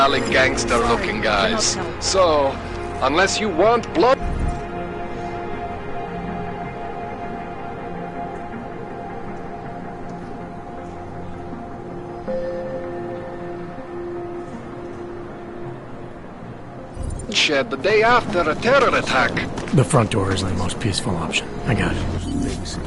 gangster-looking guys. So, unless you want blood... Shed the day after a terror attack. The front door is the most peaceful option. I got it.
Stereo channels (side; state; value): both; identical; correlation 1.00